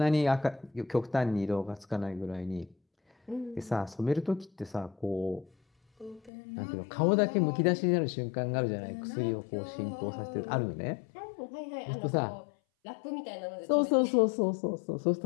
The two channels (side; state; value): right; drops out; at 6.3 s